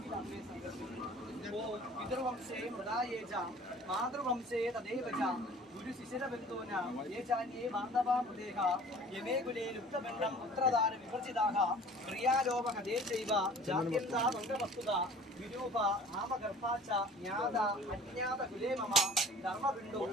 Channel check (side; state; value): both; normal; correlation 0.47